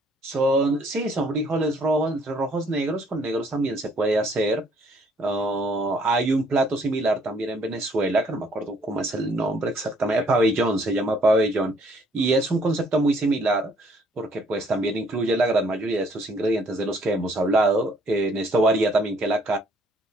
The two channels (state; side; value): normal; both; correlation 0.63